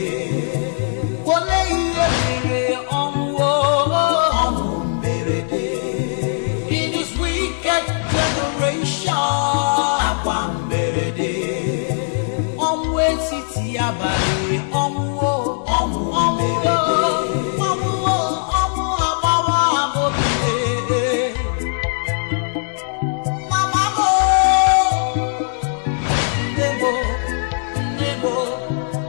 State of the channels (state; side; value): silent; right; digital silence